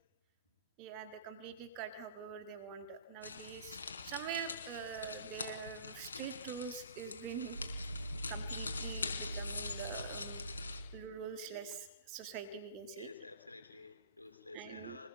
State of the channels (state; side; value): inverted; both; correlation -0.48